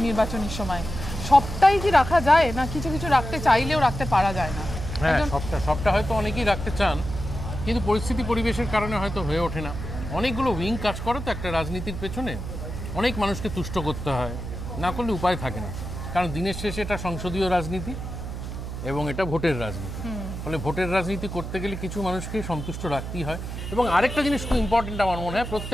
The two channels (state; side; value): noise; right; hum, 7 dB below the sound